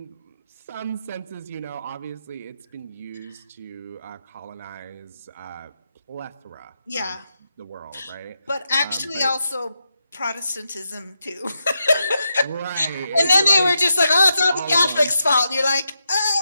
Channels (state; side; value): inverted; both; correlation -0.85